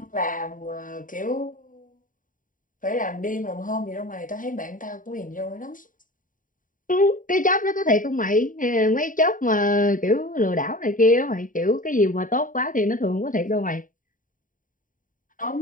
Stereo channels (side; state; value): right; late; 0.39 ms